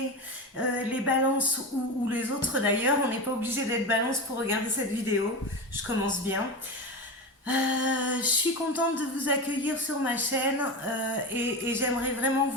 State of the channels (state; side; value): normal; both; correlation 0.22